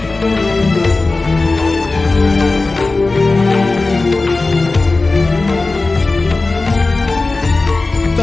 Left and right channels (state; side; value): quieter; right; 3.5 dB